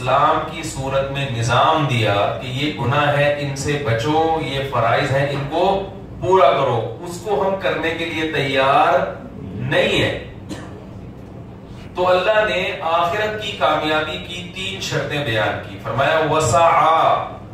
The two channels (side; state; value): both; identical; correlation 1.00